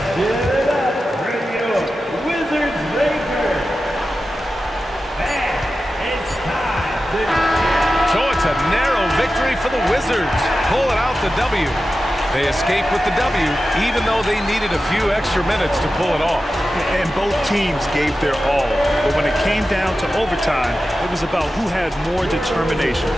give it up for your Wizards Breaker. And it's time to... So it's a narrow victory for the Wizards. Pulling out the W. They escaped with the W, even though they needed a few extra minutes to pull it off. And both teams gave their all. But when it came down to overtime, it was about who had more determination.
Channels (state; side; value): normal; both; correlation 0.93